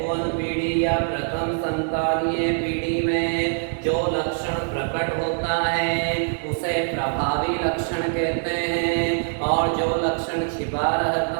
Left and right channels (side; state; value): left; silent; digital silence